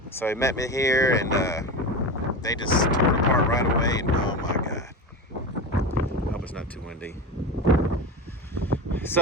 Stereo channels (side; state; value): both; normal; correlation 0.23